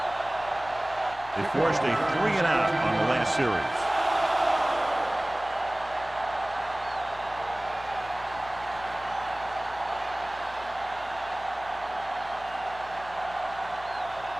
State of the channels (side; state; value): left; noise; hum, 19 dB below the sound